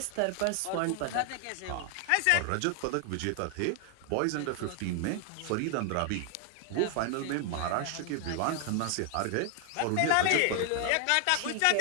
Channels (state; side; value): different; both; correlation 0.00